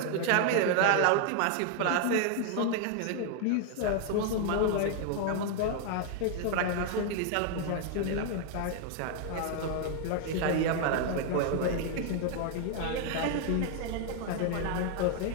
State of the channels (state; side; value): different; both; correlation 0.00